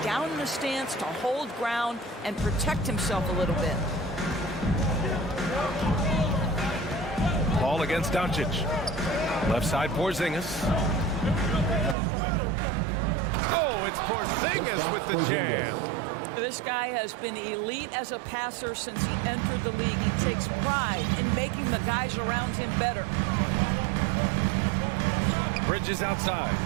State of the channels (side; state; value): left; drops out; at 12.0 s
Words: down in the stance to hold ground and protect himself a little bit. Paul against Doncic. Left side Porzingis. Oh, it's Porzingis with the jam. This guy has been elite as a passer since he entered the league. He takes pride in making the guys around him better. Bridges outside.